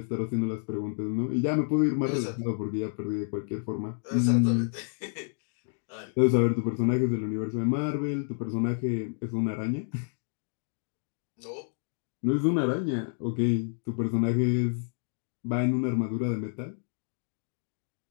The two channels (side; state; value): right; silent; 58 dB below the other